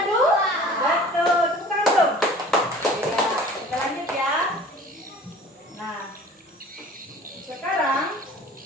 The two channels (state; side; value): normal; both; correlation 0.46